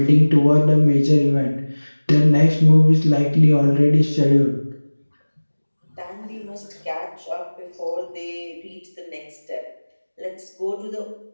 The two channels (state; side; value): inverted; both; correlation -1.00